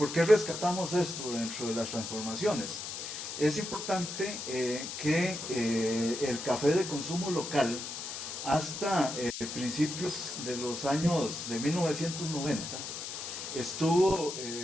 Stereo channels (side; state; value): left; noise; hiss, 7 dB below the sound